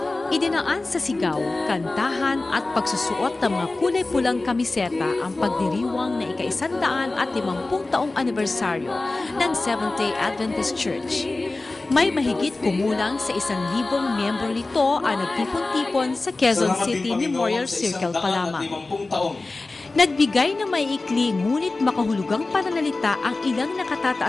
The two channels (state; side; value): quieter; right; 3.3 dB